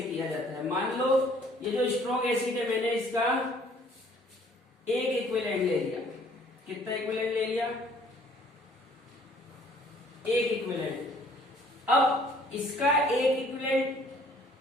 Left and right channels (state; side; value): normal; both; correlation 0.58